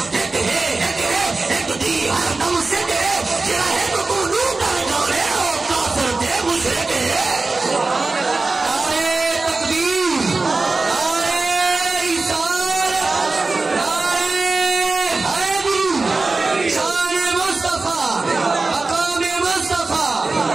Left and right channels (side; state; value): left; quieter; 3.6 dB